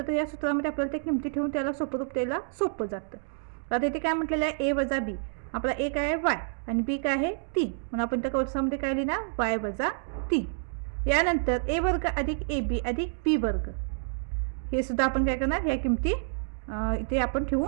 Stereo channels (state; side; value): silent; left; digital silence